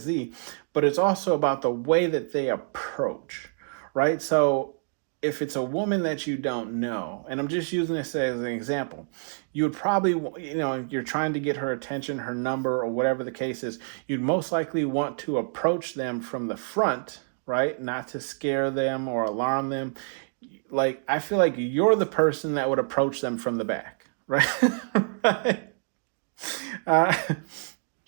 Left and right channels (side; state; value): left; silent; digital silence